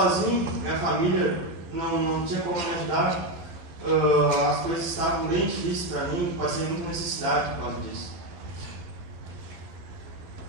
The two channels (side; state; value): left; late; 11 ms